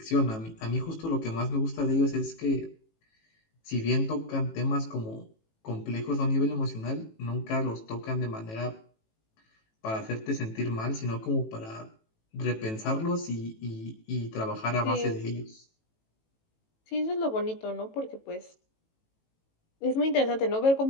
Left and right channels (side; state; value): right; late; 18 ms